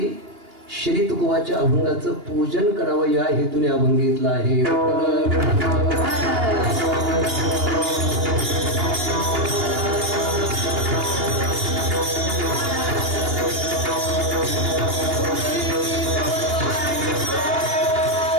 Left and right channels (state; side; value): late; left; 2.8 ms